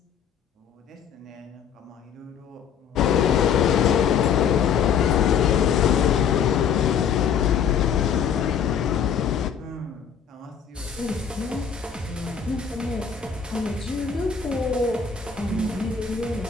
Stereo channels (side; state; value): right; quieter; 7.4 dB